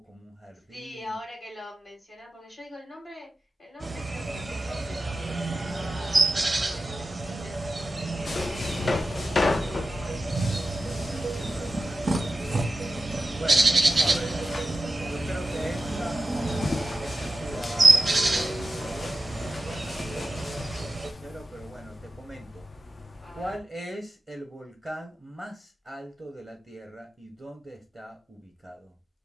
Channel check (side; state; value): both; normal; correlation 0.94